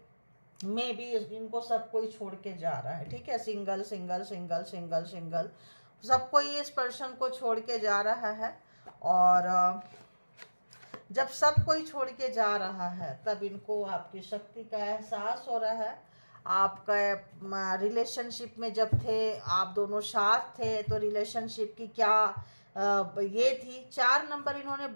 मे भी इनको सब कोई छोड़ के जा रहा है, ठीक है। Single single single single single सब कोई इस पर्सन को छोड़ के जा रहा है। और जब सब कोई छोड़ के जा रहा है तब इनको आपकी शक्ति का एहसास हो रहा है। आपका रिलेशनशिप में जब थे, आप दोनों साथ थे, तो रिलेशनशिप की क्या ये थी। 4 नंबर इन्होंने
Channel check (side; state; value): both; inverted; correlation -1.00